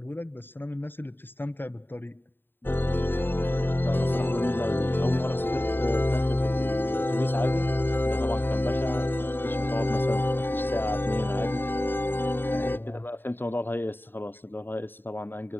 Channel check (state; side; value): late; right; 0.097 ms